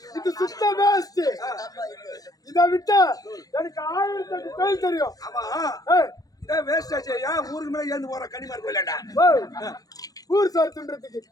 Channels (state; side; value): late; right; 0.18 ms